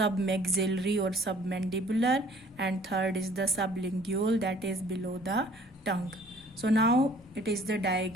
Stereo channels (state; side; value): normal; both; correlation 0.54